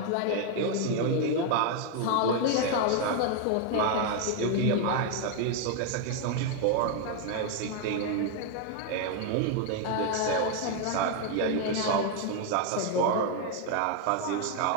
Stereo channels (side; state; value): both; different; correlation 0.01